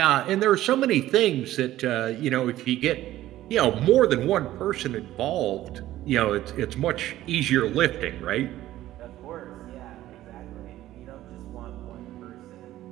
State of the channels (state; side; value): quieter; left; 14.5 dB